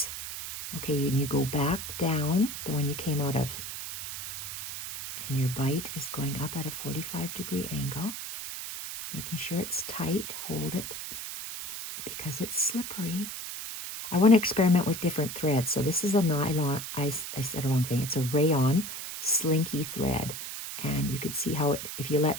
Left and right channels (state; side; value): noise; right; hiss, 7 dB below the sound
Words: okay, and you go back down, the one you came out of, and your bite is going up at a 45-degree angle, making sure it's tight, hold it, because it's slippery. I want to experiment with different threads. So this is a nylon, I said a wrong thing, it's a rayon slinky thread. And you could see how it, if you